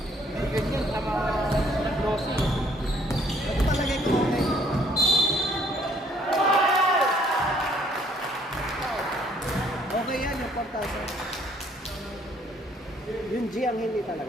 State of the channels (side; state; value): both; normal; correlation 0.63